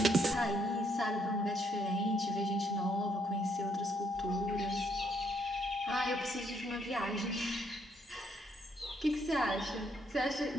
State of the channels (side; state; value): both; normal; correlation 0.71